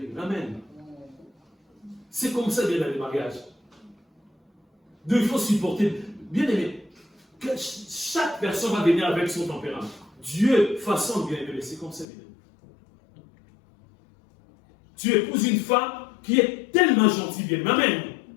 Amen. C'est comme ça, bien, dans les mariages. Donc il faut supporter. Bien aimé, chaque personne va venir avec son tempérament. Dieu façonne bien aimé, c'est comme ça, bien aimé. Tu épouses une femme qui est tellement gentille, bien aimé. Amen.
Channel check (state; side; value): drops out; right; at 12.1 s